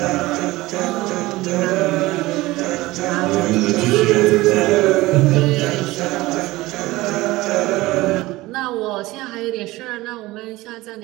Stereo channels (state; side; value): quieter; left; 19.4 dB